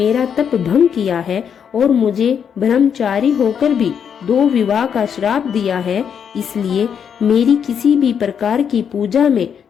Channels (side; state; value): right; quieter; 7.7 dB